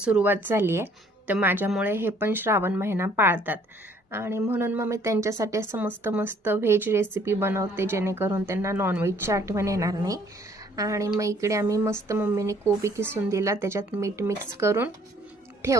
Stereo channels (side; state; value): both; normal; correlation 0.60